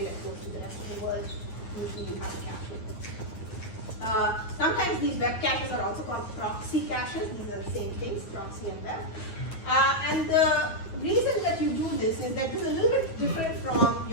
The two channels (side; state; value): right; late; 9.3 ms